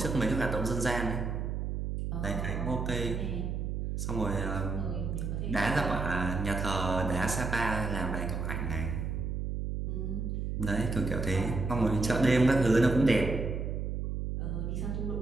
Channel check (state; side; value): noise; right; hum, 2 dB below the sound